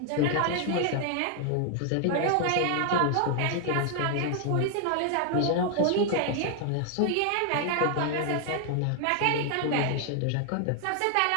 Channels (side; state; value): both; different; correlation 0.00